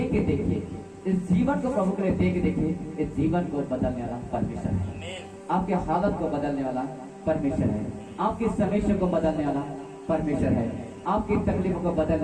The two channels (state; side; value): identical; both; correlation 1.00